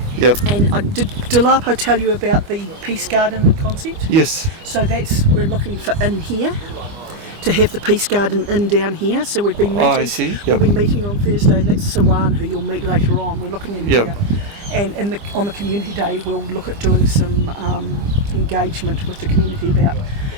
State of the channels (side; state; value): left; late; 25 ms